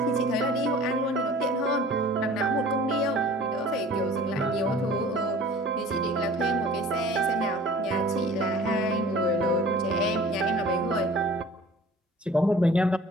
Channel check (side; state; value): both; normal; correlation 0.46